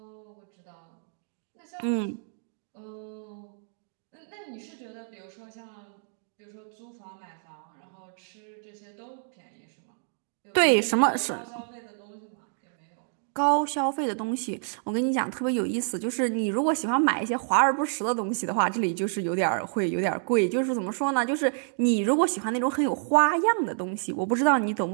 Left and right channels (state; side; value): silent; left; digital silence